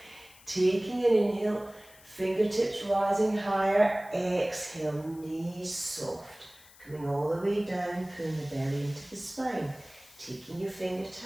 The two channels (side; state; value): left; noise; hiss, 23 dB below the sound